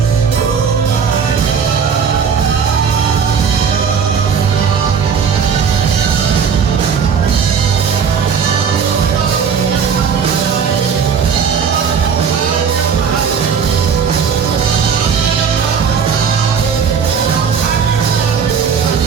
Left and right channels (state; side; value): quieter; left; 6.6 dB